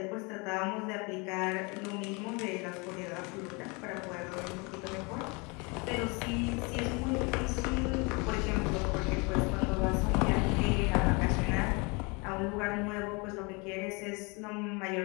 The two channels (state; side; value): quieter; right; 29.3 dB